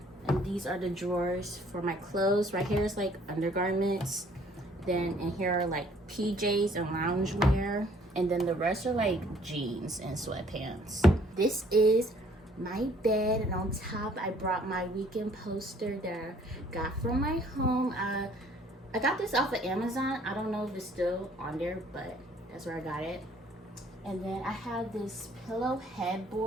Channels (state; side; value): normal; both; correlation 0.59